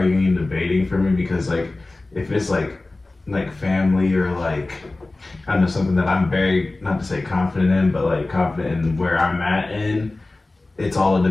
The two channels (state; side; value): quieter; right; 3.1 dB